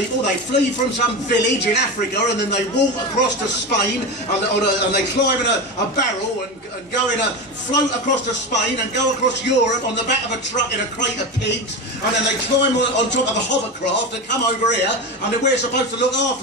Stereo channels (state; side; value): normal; both; correlation 0.21